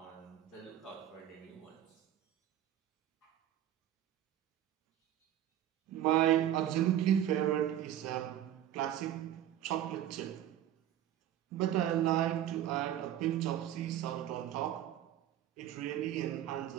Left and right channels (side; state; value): left; quieter; 11.7 dB